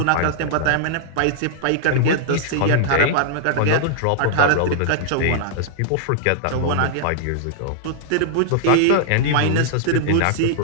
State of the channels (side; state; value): both; different; correlation -0.01